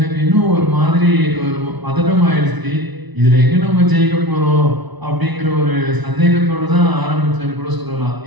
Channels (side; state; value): left; late; 1.0 ms